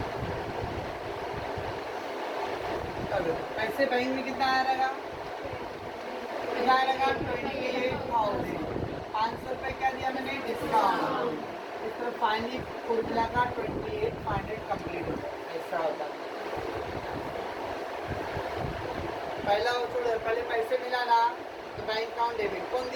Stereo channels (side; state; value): both; identical; correlation 1.00